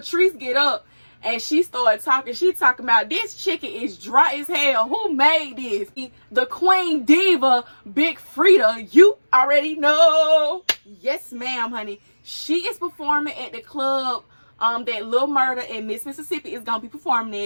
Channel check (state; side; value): inverted; both; correlation -1.00